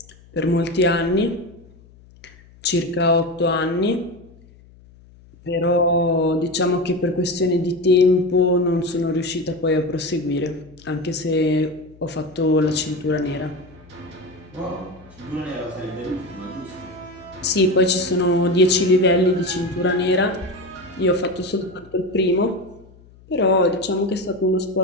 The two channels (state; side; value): noise; left; hum, 25 dB below the sound